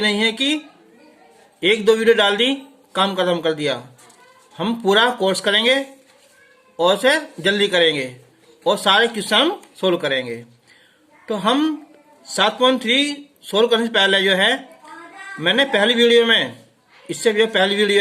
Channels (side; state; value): both; identical; correlation 1.00